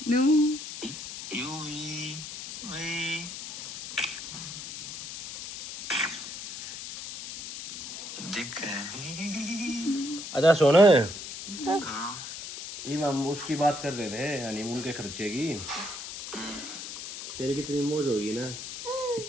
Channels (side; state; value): left; noise; hiss, 9 dB below the sound